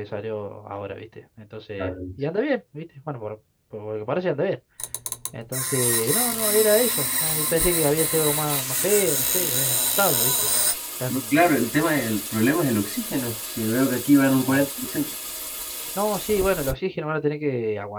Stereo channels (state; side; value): identical; both; correlation 1.00